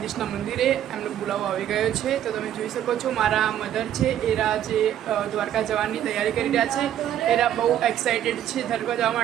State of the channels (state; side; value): quieter; left; 11.0 dB